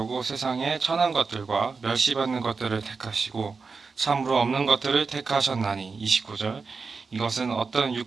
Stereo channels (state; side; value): quieter; left; 4.7 dB